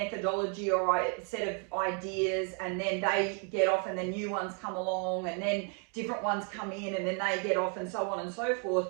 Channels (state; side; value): quieter; left; 39.3 dB